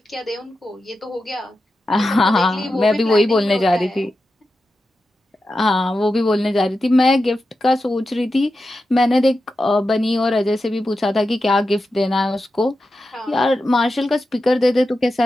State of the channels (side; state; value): both; normal; correlation 0.90